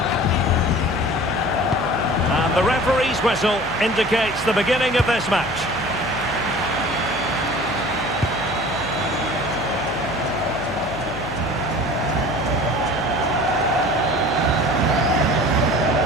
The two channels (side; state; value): left; noise; hum, 15 dB below the sound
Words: And the referee's whistle indicates the beginning of this match.